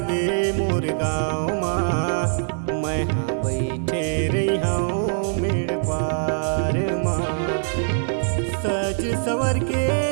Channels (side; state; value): left; silent; digital silence